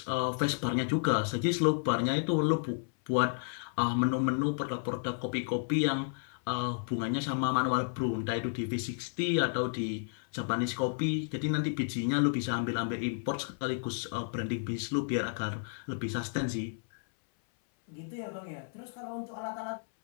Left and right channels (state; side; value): silent; right; 56 dB below the other